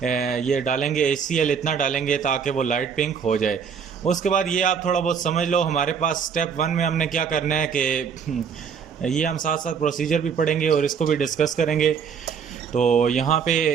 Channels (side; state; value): left; quieter; 6.7 dB